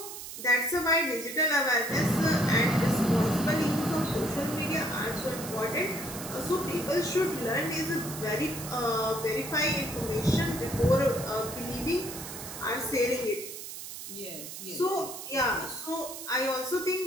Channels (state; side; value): noise; right; hiss, 10 dB below the sound